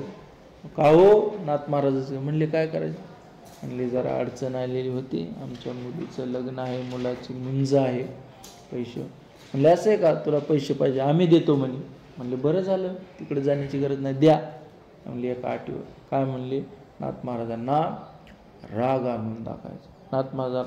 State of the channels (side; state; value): both; identical; correlation 1.00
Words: का हो? नाथ महाराजाचं. म्हणले काय करायचं? म्हणले जरा अडचण आलेली होती, आमच्या मुलीचं लग्न आहे, मुलाची मुंज आहे, पैसे. म्हणले असं आहे का, तुला पैसे पाहिजे? आम्ही देतो म्हणे. म्हणले बरं झालं, तिकडे जाण्याची गरज नाही, द्या. म्हणले एका अटीवर. काय म्हणले? नाथ महाराजांना राग आणून दाखवायचा. नाथ